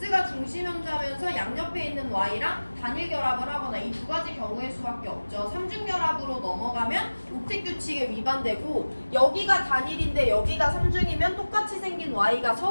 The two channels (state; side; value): inverted; both; correlation -1.00